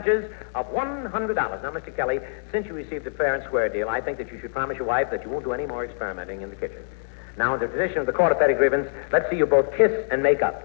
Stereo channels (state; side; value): silent; right; digital silence